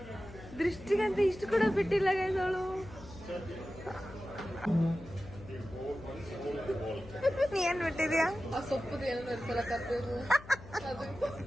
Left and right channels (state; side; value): noise; left; hum, 17 dB below the sound